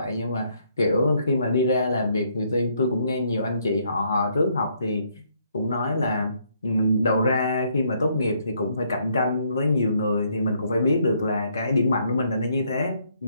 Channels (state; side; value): inverted; both; correlation -0.70